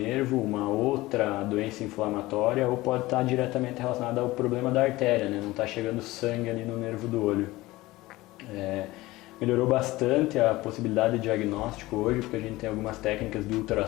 uma outra doença inflamatória, ou pode estar diretamente relacionada ao problema da artéria, né? Não está chegando sangue ali no nervo do olho. Melhorou bastante a possibilidade de diagnóstico hoje, porque a gente tem algumas técnicas de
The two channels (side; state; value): right; quieter; 19.0 dB